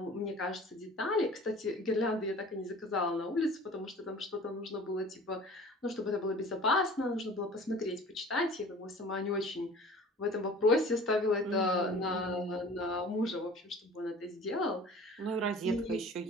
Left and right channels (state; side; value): normal; both; correlation 0.44